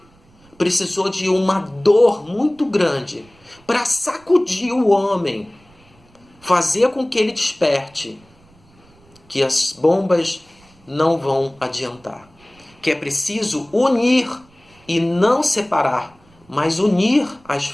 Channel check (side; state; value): right; noise; rumble, 30 dB below the sound